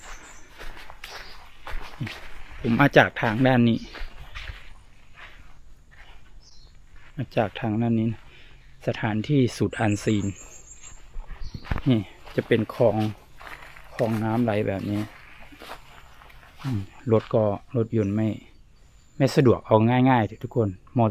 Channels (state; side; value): identical; both; correlation 1.00